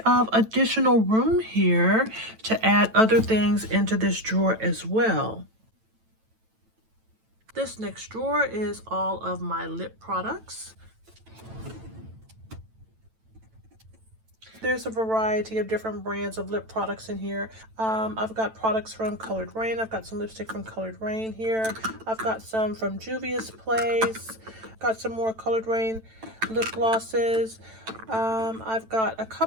of additional room here to add other things into this drawer as well. This next drawer is all of my lip products. There's a variety of different brands of lip products in here. I've got products from Colored Rain. I've got some lipstick from Colored Rain here. I've got some from Juvia's Place. Got some more Colored Rain lip glosses. I've got a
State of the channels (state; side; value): late; left; 9.0 ms